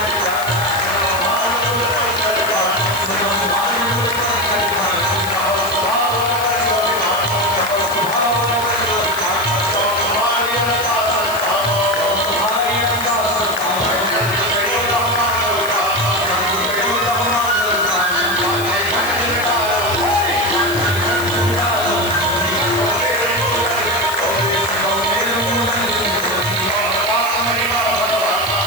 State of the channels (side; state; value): left; noise; hiss, 11 dB below the sound